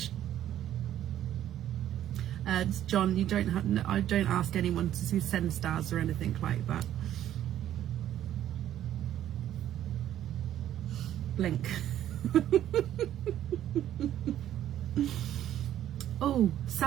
John, you don't have. I don't ask anyone to send stars or anything like that. Blink. Oh,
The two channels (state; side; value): quieter; left; 11.7 dB